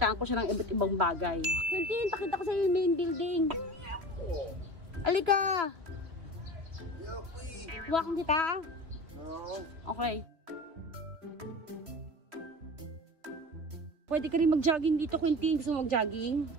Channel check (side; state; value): left; late; 3.1 ms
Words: ko siya ng iba't ibang bagay. Quintin, pakita ko sa yung main building. Alika! Huwakan kita? Okay. Pwede ka rin mag-jogging dito, Quintin. Gusto mo mag-jogging?